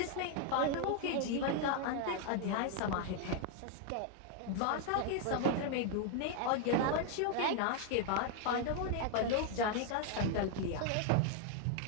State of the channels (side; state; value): both; different; correlation 0.00